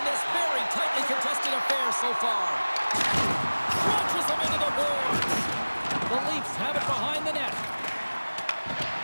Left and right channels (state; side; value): inverted; both; correlation -1.00